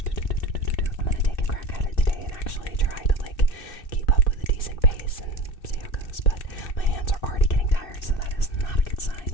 I'm gonna take a crack at it today and actually try to like keep up with a decent pace and see how it goes. But my hands are already getting tired, so that is not a good sign.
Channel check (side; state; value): right; late; 2.6 ms